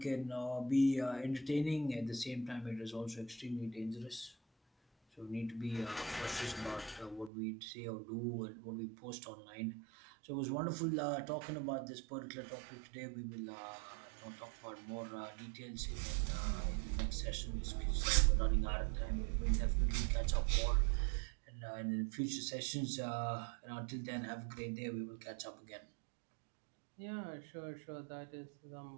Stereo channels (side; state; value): left; drops out; at 7.3 s